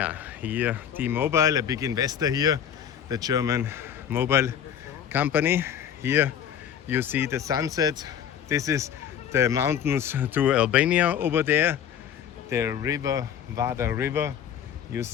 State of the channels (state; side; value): quieter; right; 9.0 dB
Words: Here T-Mobile, a big investor here, the German mobile company. Here you see the sunset. This is the mountains to Albania over there. The river, Vardar River, you